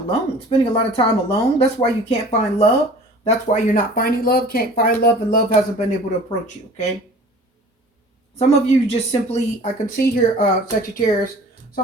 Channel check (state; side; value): normal; both; correlation 0.45